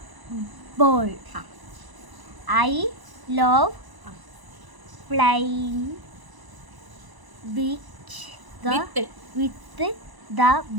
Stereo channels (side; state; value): left; late; 1.0 ms